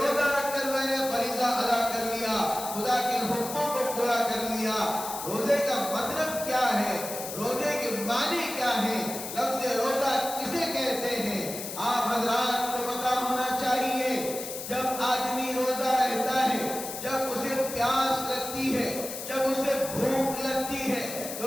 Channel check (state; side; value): noise; left; hiss, 8 dB below the sound